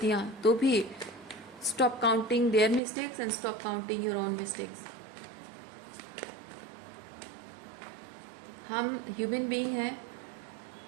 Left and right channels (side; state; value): left; drops out; at 2.8 s